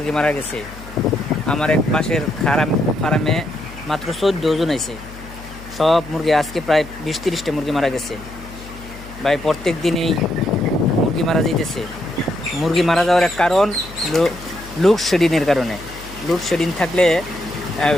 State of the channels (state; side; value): noise; left; hum, 16 dB below the sound